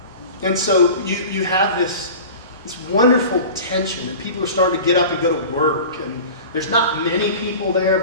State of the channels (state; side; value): inverted; both; correlation -0.37